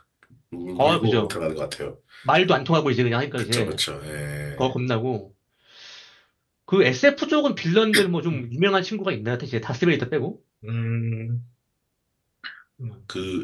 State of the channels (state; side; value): identical; both; correlation 1.00